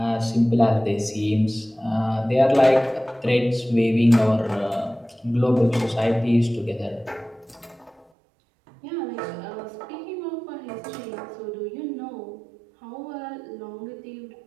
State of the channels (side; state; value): left; drops out; at 8.1 s